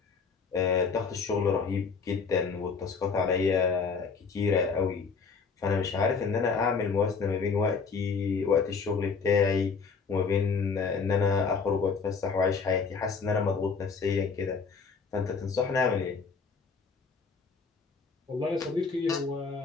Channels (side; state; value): right; quieter; 5.2 dB